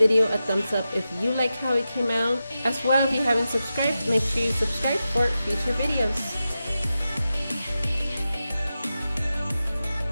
a thumbs up if you like how it came out. As well, if you haven't subscribed, make sure you subscribe for future videos.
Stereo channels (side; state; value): both; inverted; correlation -0.91